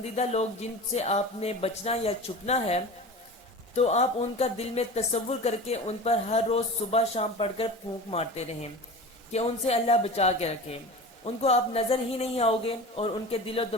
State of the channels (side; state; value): both; normal; correlation 0.33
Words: لوگ جن سے آپ نے بچنا یا چھپنا ہے، تو آپ ان کا دل میں تصور کر کے ان پر ہر روز صبح شام پڑھ کر پھونک مارتے رہیں کہ ان سے اللہ بچا کے رکھے۔ ان کو آپ نظر ہی نہیں آؤ گے اور ان کے دل و